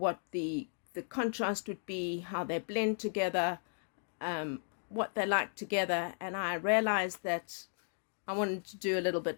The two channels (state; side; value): silent; right; digital silence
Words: the contrast would be, how they blend together, what they like together. And I realized that I wanted to do a little